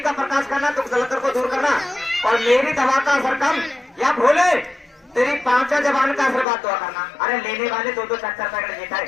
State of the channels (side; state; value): right; drops out; at 6.5 s